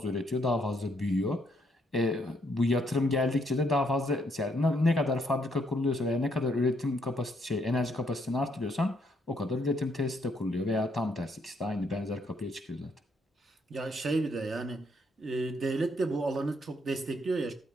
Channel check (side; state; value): both; normal; correlation 0.72